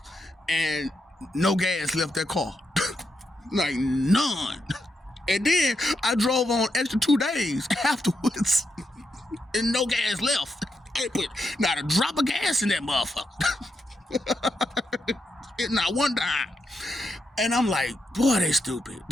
and no gas left that car. Like, none. And then I drove on extra 2 days afterwards, and no gas left. I ain't put not a drop of gas in that motherfucker. Not one dime. And I'm like, boy, they stupid.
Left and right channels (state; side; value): normal; both; correlation 0.83